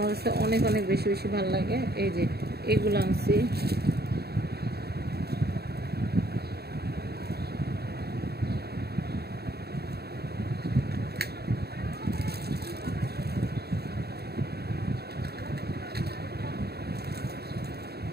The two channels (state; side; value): late; left; 0.47 ms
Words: কাছে অনেক অনেক বেশি বেশি ভালো লাগে। এই যে এগুলো আনছি।